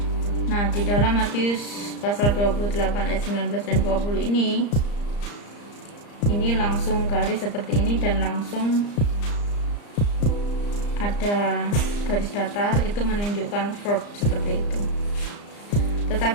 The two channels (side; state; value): right; late; 34 ms